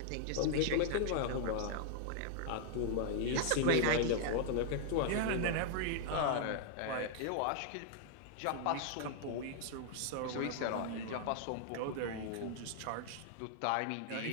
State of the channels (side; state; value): both; different; correlation -0.01